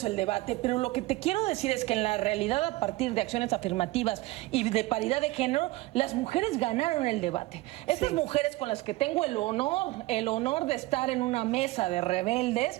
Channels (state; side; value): quieter; left; 19.6 dB